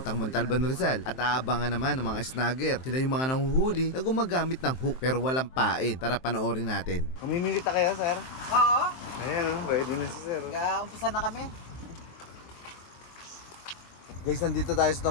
Montalban, Rizal. At aabangan naman ng mga snagger. Sila yung mga nanguhuli na gumagamit ng hook pero walang pain. Tara panoorin natin. Mamimili ta kayo, sir? Oo. Ayan o, ready na si sir. Umpisa na kami. Guys, nandito tayo sa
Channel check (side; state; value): right; late; 23 ms